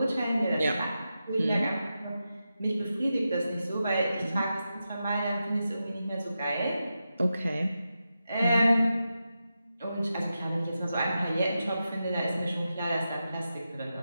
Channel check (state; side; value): inverted; both; correlation -0.90